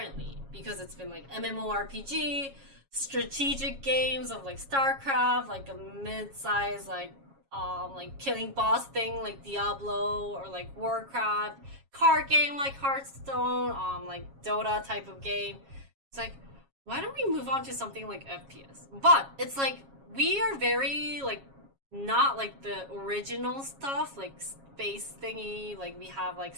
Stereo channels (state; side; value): late; left; 7.3 ms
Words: because it's been like MMORPG, strategic games of like StarCraft, like a mid-size like killing boss thing like Diablo or like Warcraft, card game like Hearthstone, like Dota type of game. It's like, why don't we move on to something like FPS? But it's like we are very like not like the original stuff like space thingy, like we have like